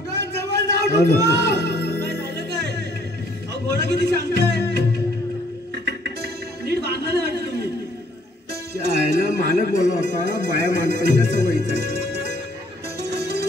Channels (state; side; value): normal; both; correlation 0.63